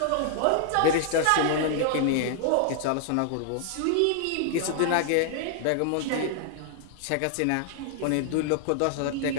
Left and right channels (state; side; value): different; both; correlation 0.00